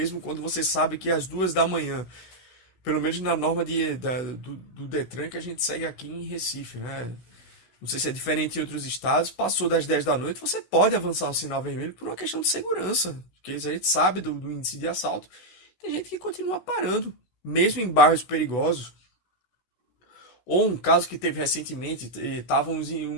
quando você sabe que é às 2 da manhã, pelo menos na norma do Detran que a gente segue aqui em Recife, né? Não sei se é diferente em outros estados, passou das 10 da noite, você pode avançar o sinal vermelho por uma questão de segurança, porque a gente sabe do índice de assalto. Tem gente que continua parando, mesmo em bairros perigosos. Ou um caso que teve recentemente, estava um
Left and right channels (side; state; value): right; late; 16 ms